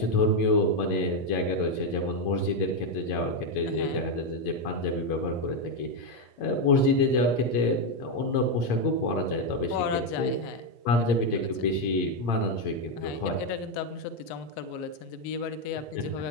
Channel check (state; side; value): late; right; 8.7 ms